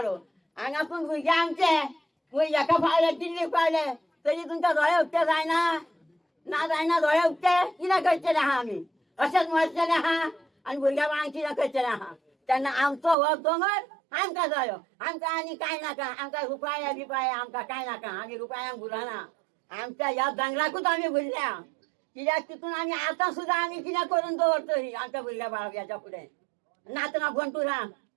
हांगासून भुरगे आमचे हेका पावले दिल्लीक पावले तरी तुमकां दोळे उक्ते जायना ना जायना. दोळे उक्ते कितें करचेलें आहा आमी अशेंच मरचेलें आहा आनी भुरग्या बाळांक कितें करचेलें आहा. तेन्ना आमचो हो दोंगर आमकां जायो. आमकां आनी कांय नाका. आमकां रुपया बिपाया आमकां कांय नाका. आमी रुपयांक भुलना. आमच्या ह्या दोंगराकूच आमी भुल्ल्या. कित्याक तितून आमी आतां सुद्दां आमी कितें करून दवरतली आमच्या भुरग्या बाळाक हेच्या फुडें. नातना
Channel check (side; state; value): left; drops out; at 13.2 s